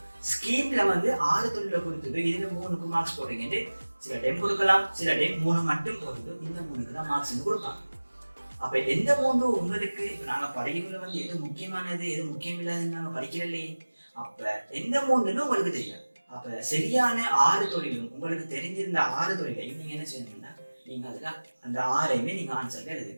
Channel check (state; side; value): inverted; both; correlation -1.00